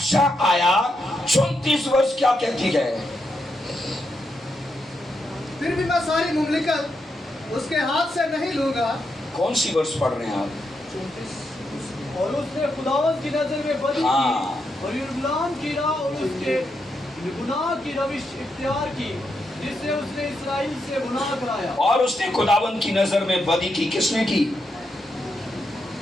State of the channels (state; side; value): normal; both; correlation 0.83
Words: आया। 34 वर्ष क्या कहती है? फिर भी मैं सारी मुमलिकत उसके हाथ से नहीं लूंगा। कौन सी वर्ष पढ़ रहे हैं आप? 34। और उसने खुदावंद की नजर में बदी हाँ। की और यरूशलेम की राह और उसके गुनाह की रविश इख्तियार की, जिससे उसने इस्राएल से गुनाह कराया। और उसने खुदावंद की नजर में बदी की। किसने की?